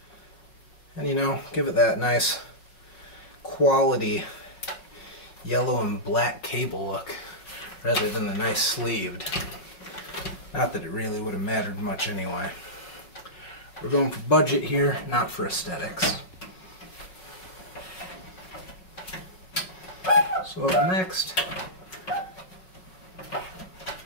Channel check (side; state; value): right; late; 5.4 ms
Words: and, you know, give it that nice quality yellow and black cable look rather than the nice sleeved. Not that it really would have mattered much anyway. We're going for budget here, not for aesthetics. So up next,